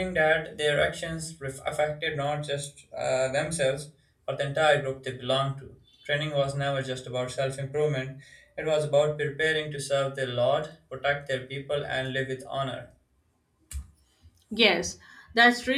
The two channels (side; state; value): both; identical; correlation 1.00